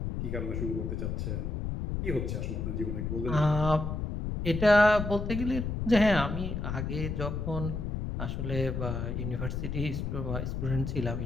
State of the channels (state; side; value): noise; left; rumble, 3 dB below the sound